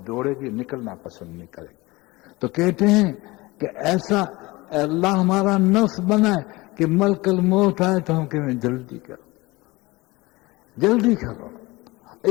دوڑے گی، نکلنا پسند نہیں کرے گی۔ تو کہتے ہیں کہ ایسا اللہ ہمارا نفس بنائے کہ ملک الموت آئے تو ہم کہیں جلدی کرو، جلدی کرو۔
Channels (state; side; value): quieter; right; 21.8 dB